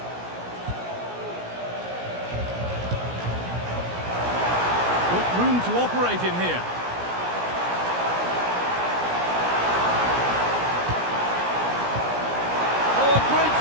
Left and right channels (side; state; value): left; late; 17 ms